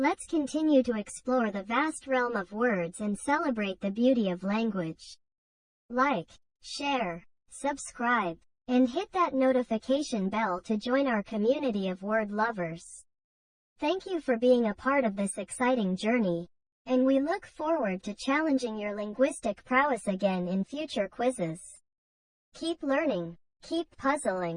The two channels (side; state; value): both; identical; correlation 1.00